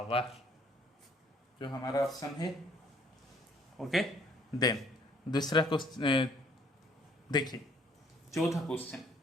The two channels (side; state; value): both; normal; correlation 0.61